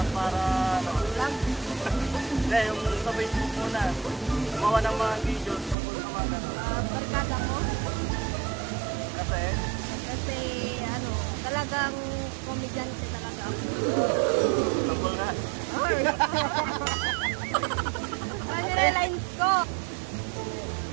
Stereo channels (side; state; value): left; drops out; at 5.8 s